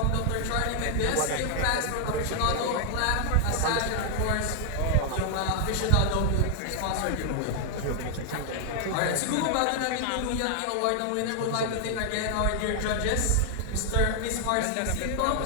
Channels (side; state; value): both; different; correlation 0.00